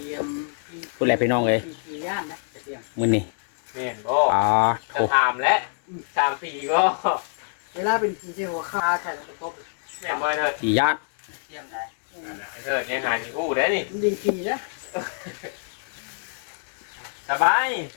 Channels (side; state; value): right; silent; 62 dB below the other